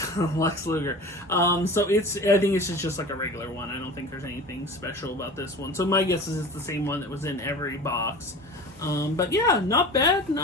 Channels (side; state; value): both; normal; correlation 0.37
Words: Luger. So I think it's just like a regular one. I don't think there's anything special about this one. So my guess is it's the same one that was in every box. But yeah, not bad,